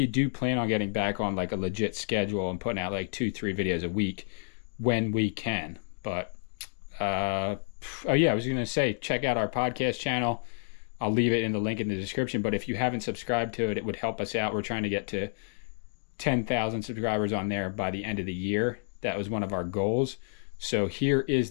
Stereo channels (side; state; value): right; silent; digital silence